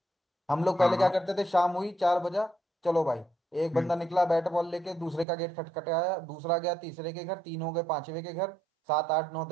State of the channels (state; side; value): drops out; left; at 5.2 s